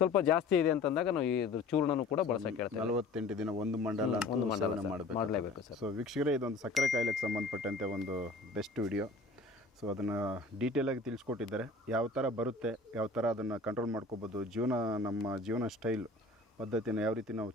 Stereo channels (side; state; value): right; quieter; 3.3 dB